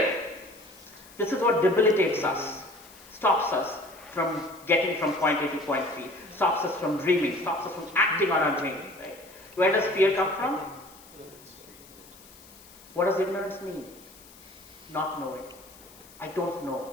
This is what debilitates us, stops us from getting from point A to point B, stops us from dreaming, stops us from acting on our dream, right? Where does fear come from? What does ignorance mean? Not knowing. I don't know.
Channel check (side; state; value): left; noise; hiss, 22 dB below the sound